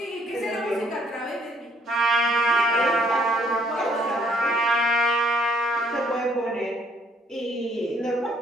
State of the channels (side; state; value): both; normal; correlation 0.66